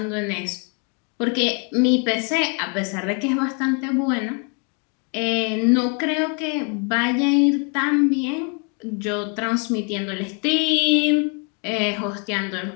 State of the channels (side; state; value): right; quieter; 37.4 dB